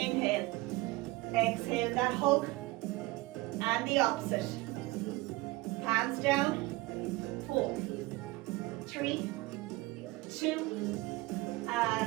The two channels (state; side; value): quieter; left; 21.2 dB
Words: Exhale, that hug. And the opposite. Hands down. 4, 3, 2,